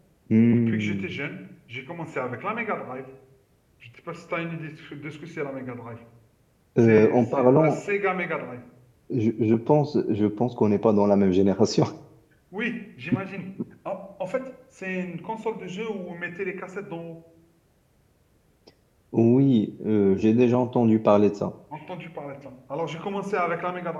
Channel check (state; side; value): identical; both; correlation 1.00